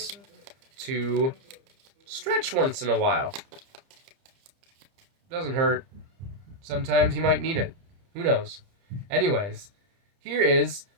to stretch once in a while. Doesn't hurt. Sometimes you might need it. Who knows? Anyways, here is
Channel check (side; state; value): left; late; 30 ms